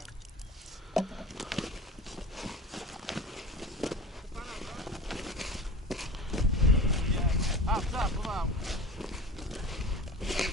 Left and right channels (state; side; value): normal; both; correlation 0.34